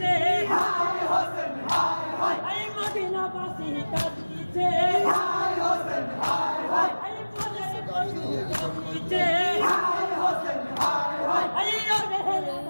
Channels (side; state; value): both; inverted; correlation -1.00